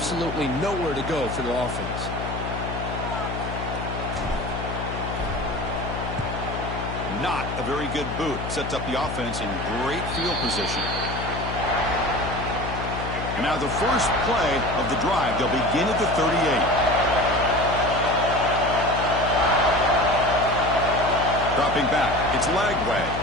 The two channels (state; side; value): noise; left; hum, 6 dB below the sound